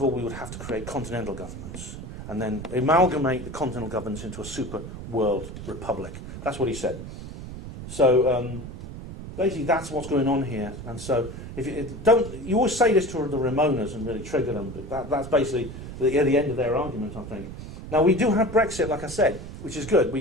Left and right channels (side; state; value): right; noise; rumble, 10 dB below the sound